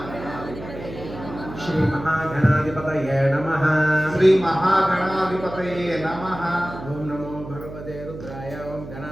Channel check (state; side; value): noise; right; hum, 12 dB below the sound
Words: श्री महागणाधिपतये नमः श्री महागणाधिपतये नमः। ओम नमो भगवते रुद्राय। ओम